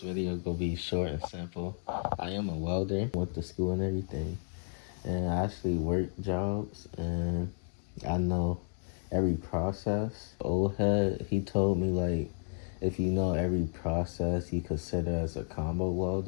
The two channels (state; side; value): silent; right; 56 dB below the other